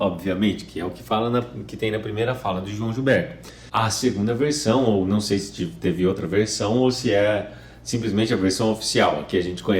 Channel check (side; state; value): both; identical; correlation 1.00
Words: que é o que que tem na primeira fala do João Gilberto. A segunda versão, ou não sei se teve outra versão ou se é simplesmente a versão oficial, a que a gente